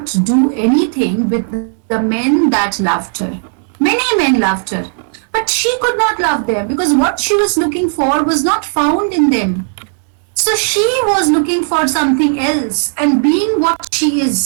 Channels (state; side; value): silent; left; digital silence